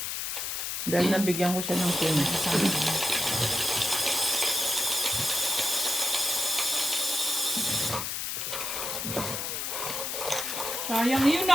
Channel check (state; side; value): noise; left; hiss, 3 dB below the sound